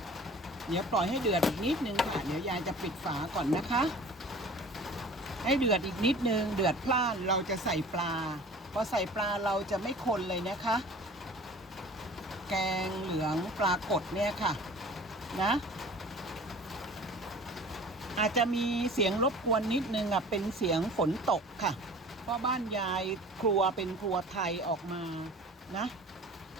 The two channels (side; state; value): both; normal; correlation 0.44